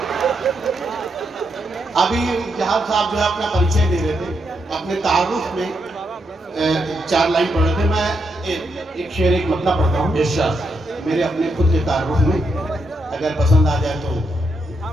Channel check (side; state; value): both; normal; correlation 0.81